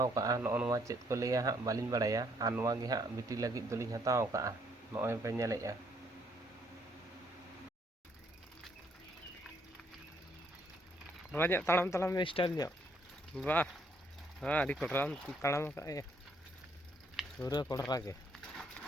ᱠᱟᱜᱼᱟ, ᱱᱚᱜᱼᱚ ᱱᱚᱣᱟ ᱪᱮᱫ ᱠᱚ ᱞᱟᱹᱭᱟ ᱦᱟᱸᱜ ᱵᱟᱹᱞᱤᱧ ᱵᱟᱲᱟᱭᱟ, ᱟᱨ ᱱᱚᱣᱟ ᱜᱮ ᱦᱟᱸᱜ ᱵᱤᱴᱤ ᱞᱟᱹᱜᱤᱫ ᱫᱚᱞᱤᱧ ᱦᱟᱛᱟᱣ ᱠᱟᱜᱼᱟ, ᱱᱚᱜᱼᱚᱭ ᱯᱮ ᱧᱮᱞᱮᱜᱼᱟ᱾ ᱱᱚᱣᱟ ᱧᱚᱜ ᱛᱟᱲᱟᱢ ᱛᱟᱲᱟᱢ ᱥᱴᱟᱭᱤᱞ ᱧᱚᱜ ᱵᱟᱦ, ᱦᱮᱸ ᱟᱹᱰᱤ ᱠᱚᱰᱨᱟᱢ ᱛᱟᱲᱟᱢ ᱟᱠᱟᱫ ᱯᱩᱨᱟᱹ ᱠᱚᱰᱨᱟ ᱜᱮ᱾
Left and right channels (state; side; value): normal; both; correlation 0.69